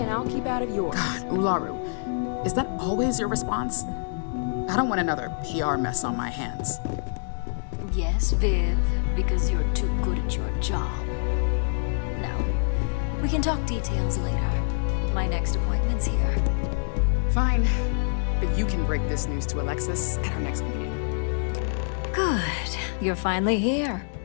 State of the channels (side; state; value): right; silent; 61 dB below the other